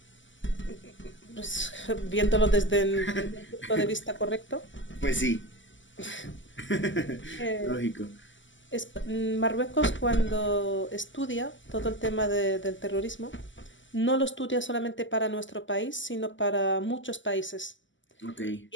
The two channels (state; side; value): late; right; 0.55 ms